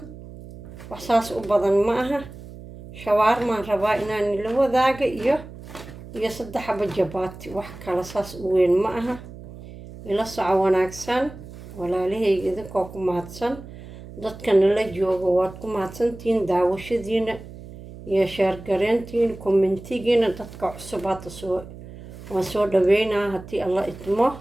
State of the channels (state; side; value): noise; right; hum, 15 dB below the sound